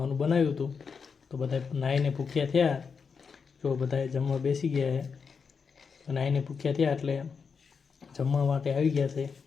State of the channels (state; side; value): quieter; right; 5.7 dB